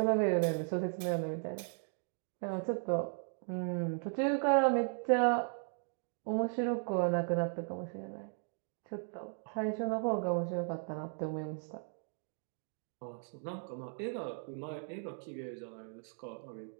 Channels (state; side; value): silent; left; 53 dB below the other